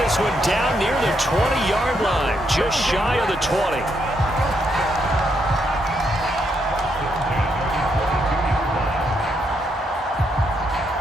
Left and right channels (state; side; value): normal; both; correlation 0.77